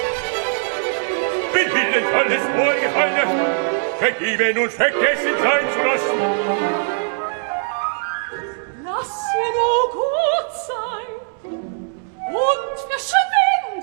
bin Willen alles Vorgefallene, vergeben und vergessen sein zu lassen. Lass ihr nur gut sein und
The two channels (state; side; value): silent; left; 65 dB below the other